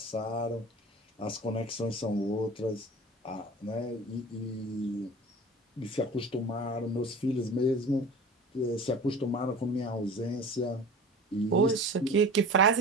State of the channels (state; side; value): normal; both; correlation 0.38